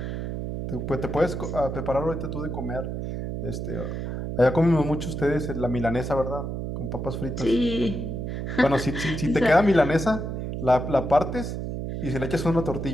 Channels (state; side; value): noise; right; hum, 4 dB below the sound